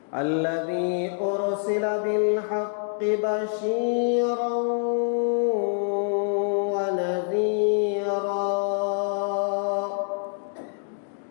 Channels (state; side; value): silent; right; digital silence